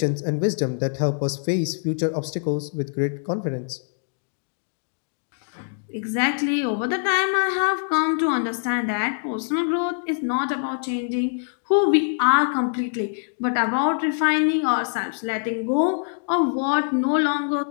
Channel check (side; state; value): right; silent; digital silence